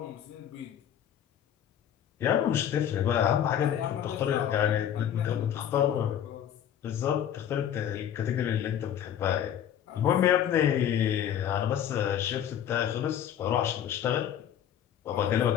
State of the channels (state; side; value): quieter; right; 9.9 dB